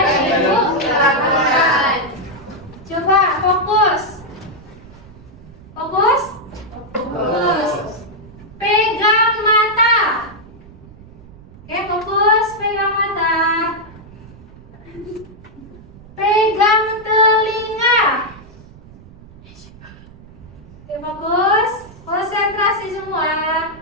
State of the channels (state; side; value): noise; right; rumble, 21 dB below the sound